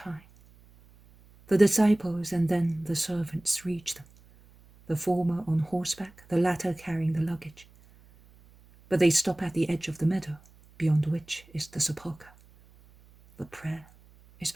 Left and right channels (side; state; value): right; noise; hum, 27 dB below the sound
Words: The disciples and then the servants reach them, the former on horseback, the latter carrying the luggage. But they stop at the edge of the meadow, beyond which is the sepulchre. The prayer is